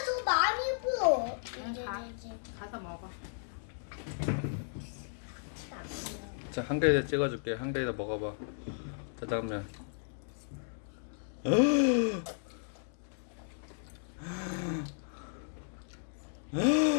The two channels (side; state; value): right; silent; digital silence